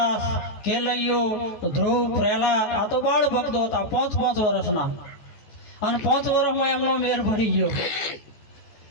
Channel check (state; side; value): late; right; 14 ms